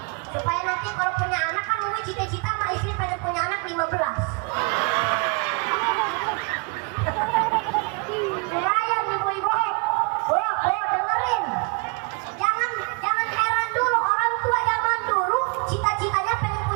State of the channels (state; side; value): quieter; left; 32.3 dB